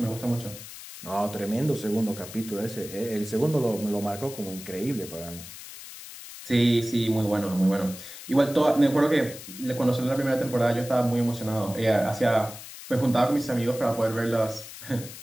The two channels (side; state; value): left; noise; hiss, 14 dB below the sound